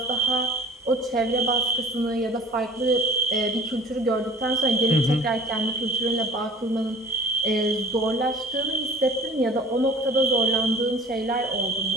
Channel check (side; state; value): both; normal; correlation 0.45